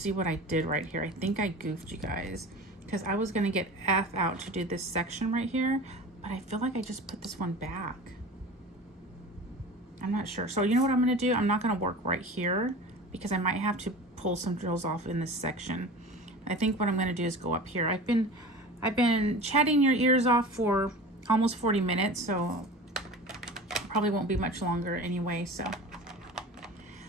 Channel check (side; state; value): both; normal; correlation 0.36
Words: what I did right here. I think I goofed you guys, because I was gonna get F out to do this section right here, but I feel like I just put this one back. I'm not sure. So you know what I'm going to do? I'm not going to work right here because I might have to pull some drills off in this section. I think what I'm going to do is go up here. I've been chatting your ears off for almost 40 minutes, so probably won't be much longer anyway. So,